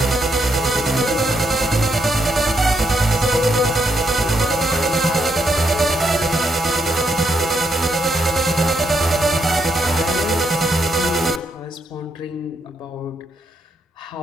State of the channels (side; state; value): both; normal; correlation 0.78